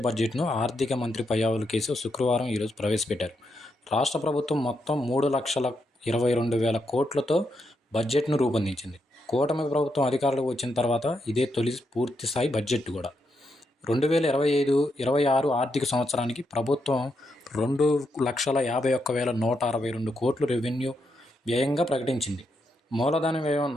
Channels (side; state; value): both; normal; correlation 0.81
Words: బడ్జెట్ను ఆర్థిక మంత్రి పయ్యావుల కేశవ్ శుక్రవారం ప్రవేశపెట్టారు. రాష్ట్ర ప్రభుత్వం మొత్తం 3,22,000 కోట్లతో బడ్జెట్ను రూపొందించింది. కూటమి ప్రభుత్వం అధికారంలోకి వచ్చిన తర్వాత ఇదే తొలి పూర్తిస్థాయి బడ్జెట్ కూడా. 2025-26 ఆర్థిక సంవత్సరానికి ప్రభుత్వం 2,51,162 కోట్లు రెవెన్యూ వ్యయంగా ప్రకటించింది. మూలధన వ్యయం